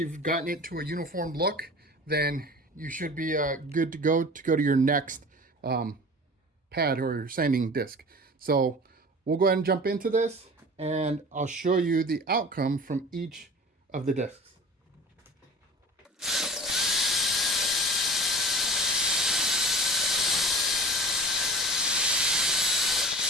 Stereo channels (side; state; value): both; normal; correlation 0.39